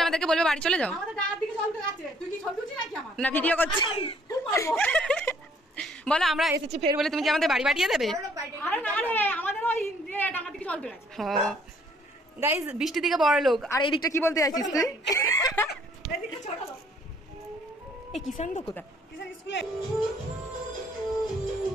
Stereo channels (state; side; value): normal; both; correlation 0.63